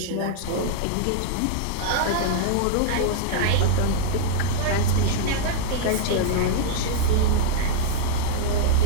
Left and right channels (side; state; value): both; different; correlation -0.01